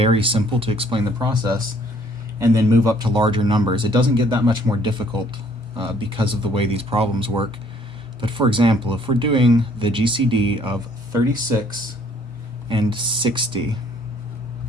simple to explain the process, and then move up to larger numbers. It doesn't get that much more difficult because of the way these problems work. But for example, if we're doing the GCD of 36 and 60,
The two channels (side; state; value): both; normal; correlation 0.61